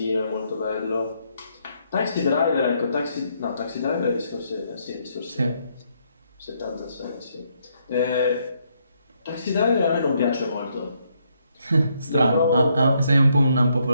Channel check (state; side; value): inverted; both; correlation -0.74